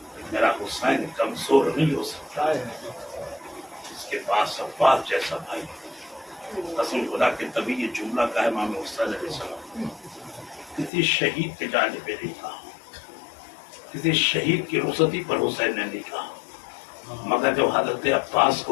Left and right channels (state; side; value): drops out; right; at 10.9 s